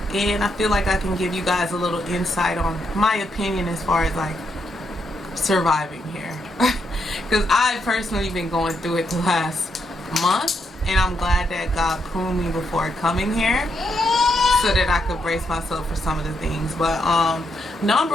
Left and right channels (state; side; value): normal; both; correlation 0.79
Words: and I feel like I can give you guys a little insight on my opinion as far as like surviving here. Because I've personally been going through it the last month, and I'm glad that God pruned me before coming here so that I could brace myself for some of the things. But